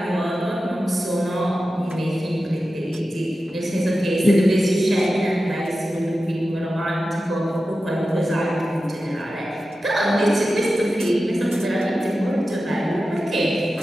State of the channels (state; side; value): normal; both; correlation 0.93